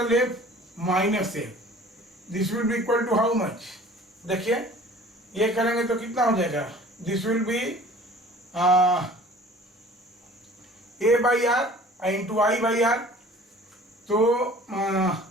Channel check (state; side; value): normal; both; correlation 0.48